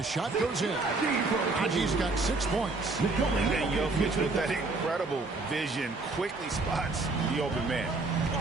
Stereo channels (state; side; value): quieter; left; 3.5 dB